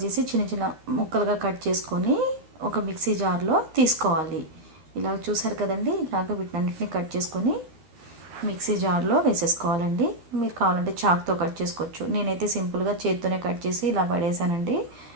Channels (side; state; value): left; late; 13 ms